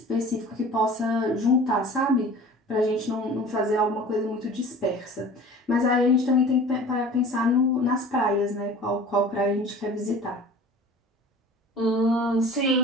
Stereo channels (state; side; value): normal; both; correlation 0.42